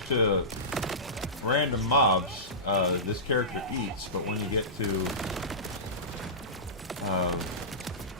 to random mobs, this character eats, but when you get to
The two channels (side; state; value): both; normal; correlation -0.19